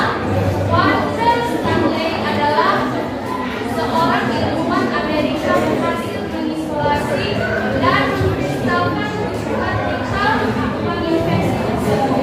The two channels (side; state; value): both; identical; correlation 1.00